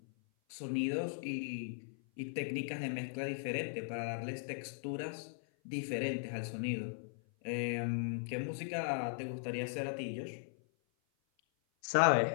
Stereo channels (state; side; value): silent; right; 52 dB below the other